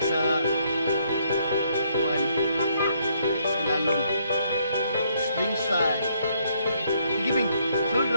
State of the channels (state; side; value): inverted; both; correlation -0.70